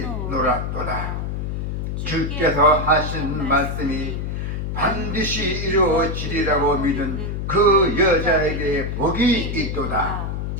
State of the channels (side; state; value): left; noise; hum, 3 dB below the sound